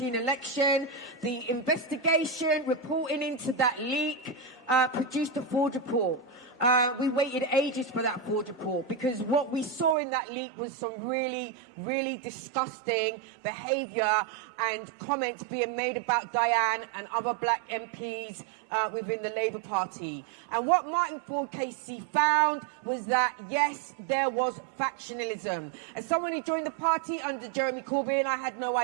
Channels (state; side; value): drops out; left; at 10.0 s